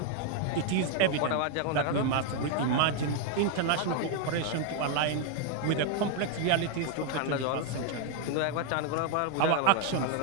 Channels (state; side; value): different; both; correlation 0.00